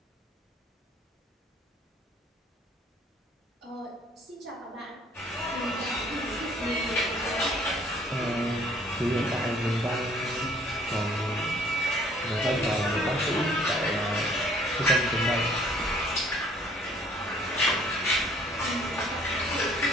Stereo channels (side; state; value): both; normal; correlation 0.59